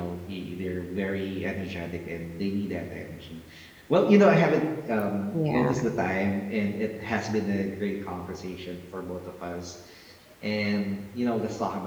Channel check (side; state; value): both; identical; correlation 1.00